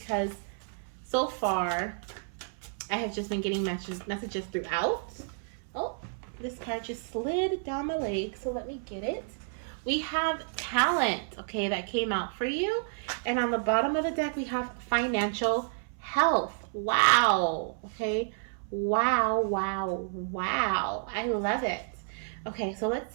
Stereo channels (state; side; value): silent; left; 58 dB below the other